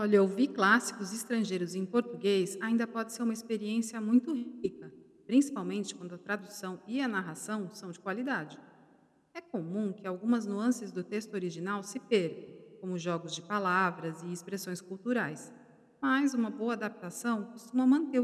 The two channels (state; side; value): identical; both; correlation 1.00